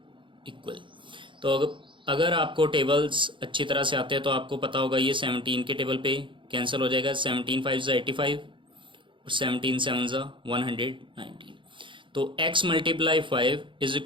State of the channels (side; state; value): left; late; 0.24 ms